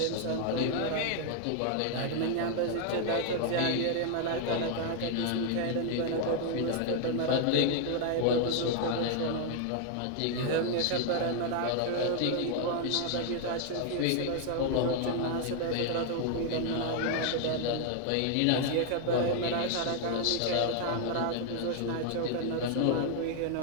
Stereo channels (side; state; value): both; different; correlation 0.00